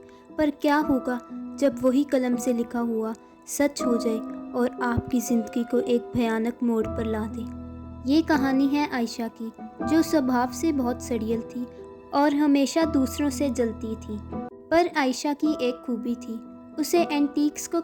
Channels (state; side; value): identical; both; correlation 1.00